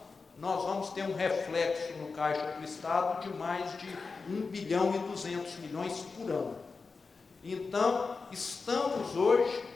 nós vamos ter um reflexo no caixa do estado de mais de 1 bilhão e 200 milhões por ano. Então, estamos hoje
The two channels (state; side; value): quieter; right; 4.4 dB